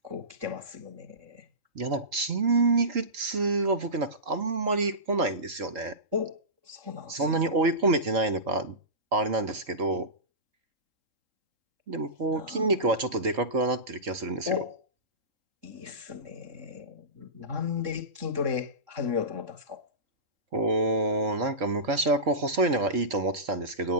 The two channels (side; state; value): left; late; 3.8 ms